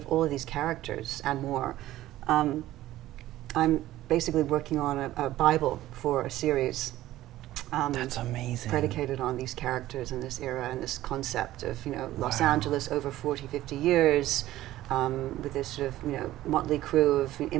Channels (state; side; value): quieter; left; 15.1 dB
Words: of all of these characters and more. I'm basically working on a Bible for a series. That's amazing. Predicated on these characters and this era and this concept of, Los Angeles over 40, 50 years, with this sort of, motley crew of